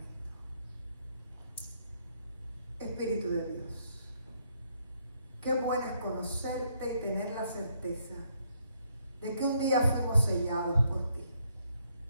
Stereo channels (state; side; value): inverted; both; correlation -0.72